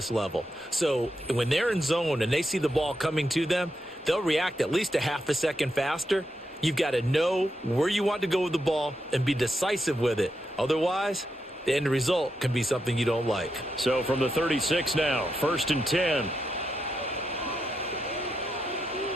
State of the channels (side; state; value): both; normal; correlation 0.84